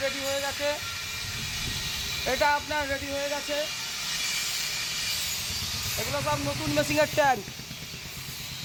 রেডি হয়ে গেছে, এটা আপনার রেডি হয়ে গেছে। এগুলো সব নতুন মেশিনের ট্যাঙ্ক,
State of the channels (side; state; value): both; identical; correlation 1.00